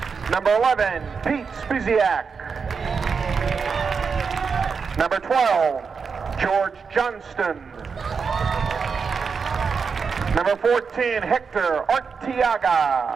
Number 11, Pete Spiziak. Number 12, George Johnston. Number 14, Hector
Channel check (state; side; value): quieter; left; 5.6 dB